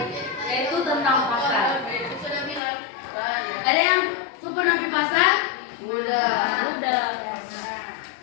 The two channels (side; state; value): right; drops out; at 2.6 s